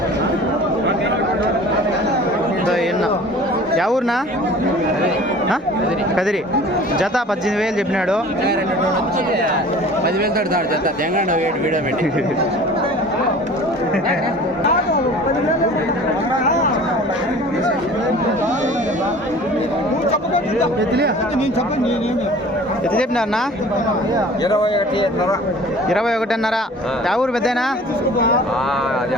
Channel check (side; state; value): both; normal; correlation 0.45